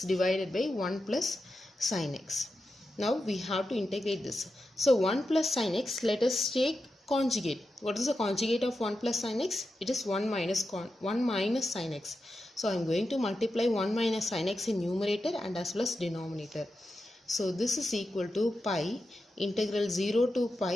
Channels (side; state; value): both; normal; correlation 0.90